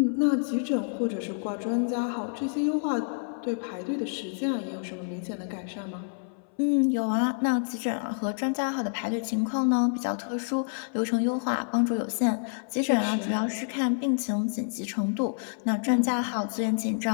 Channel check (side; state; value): right; silent; 59 dB below the other